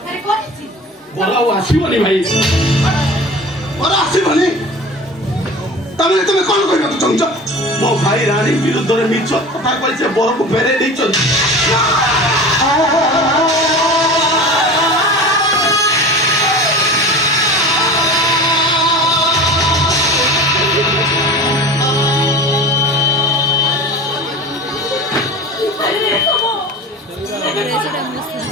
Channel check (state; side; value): normal; both; correlation 0.36